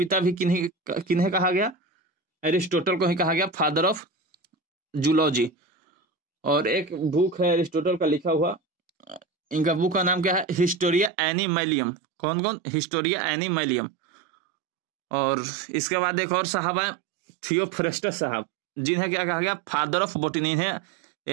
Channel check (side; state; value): left; drops out; at 11.1 s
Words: भी किन्हें कहा गया? एरिस्टोटल को ही कहा गया फादर ऑफ जूलॉजी। और एक बुक है एरिस्टोटल का लिखा हुआ, इनका बुक का नाम क्या है? हिस्टोरिया एनिमैलियम। कौन कौन? हिस्टोरिया एनिमैलियम। और इसके बाद एक और साहब है, थियोफ्रेस्टस साहब, जिन्हें क्या कहा गया? फादर ऑफ बोटनी है।